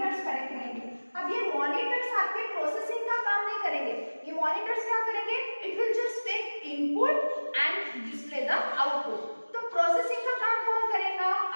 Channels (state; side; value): inverted; both; correlation -1.00